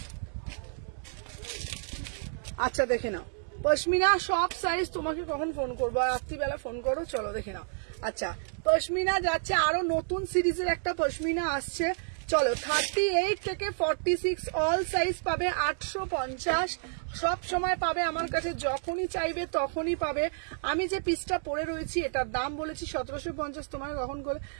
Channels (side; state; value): left; silent; digital silence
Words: আচ্ছা দেখে নাও পশমিনা সব সাইজ। তোমাকে কখন ফোন করবো? রাত্রিবেলা ফোন করো। চলো দেখে নাও। আচ্ছা পশমিনা যাচ্ছে, আরো নতুন সিরিজের একটা পশমিনা আসছে। চলো 38 থেকে 46 অল সাইজ পাবে, 850 সব সময় পাবে আমার কাছে, যখনই চাইবে তখনই পাবে। আমি যে পিসটা পরে রয়েছি এটার দাম বলেছি 1750। তোমাকে কখন করে